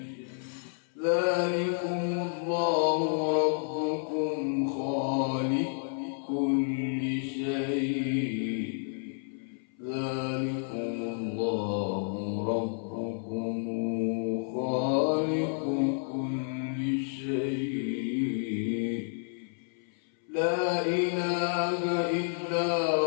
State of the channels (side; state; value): right; silent; 58 dB below the other